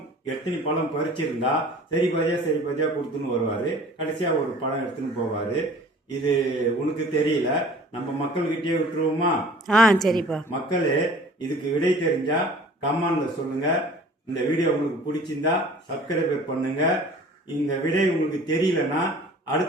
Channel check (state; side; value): normal; both; correlation 0.47